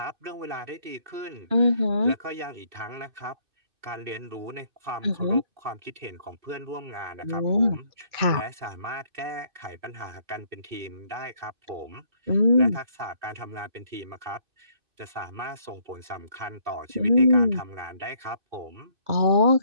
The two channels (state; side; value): late; left; 2.6 ms